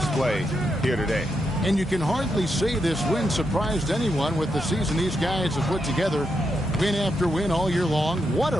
here today. And you can hardly say this win surprised anyone with the season these guys have put together. Win after win all year long. What a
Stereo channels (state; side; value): normal; both; correlation 0.83